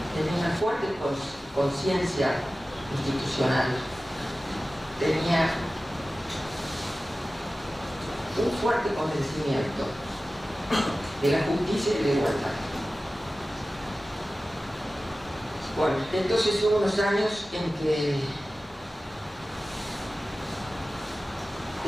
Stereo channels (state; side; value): normal; both; correlation 0.96